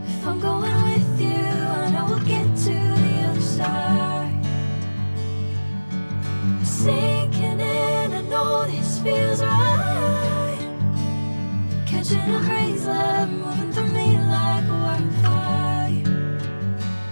I'm going with you, I know we'll get to the other side. Sinking in, I know this feels right. Catching a crazy love, moving through me like a wildfire,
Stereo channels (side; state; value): both; inverted; correlation -1.00